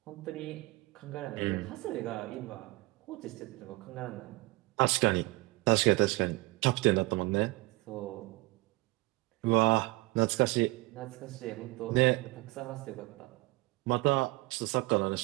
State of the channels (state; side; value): quieter; left; 22.0 dB